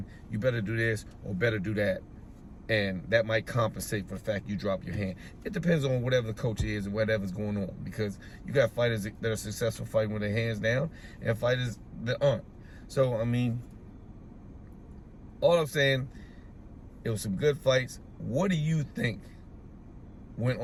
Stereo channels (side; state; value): both; identical; correlation 1.00